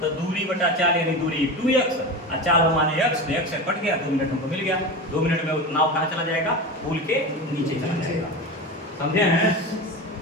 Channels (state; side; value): normal; both; correlation 0.25